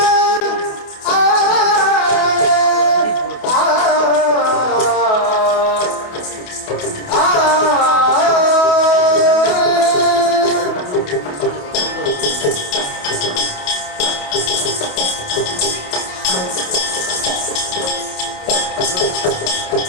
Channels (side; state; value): right; late; 28 ms